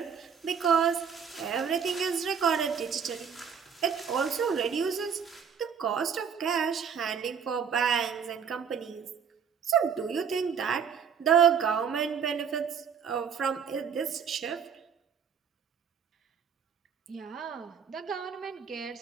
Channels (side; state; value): left; quieter; 7.0 dB